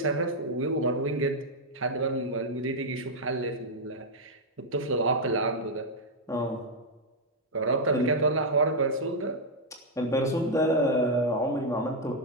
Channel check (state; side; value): normal; both; correlation -0.01